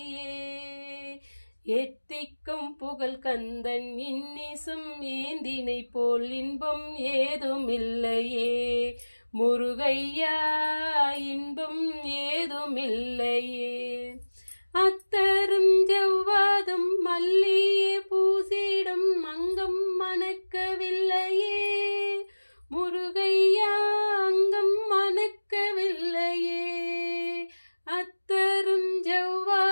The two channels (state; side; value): inverted; both; correlation -1.00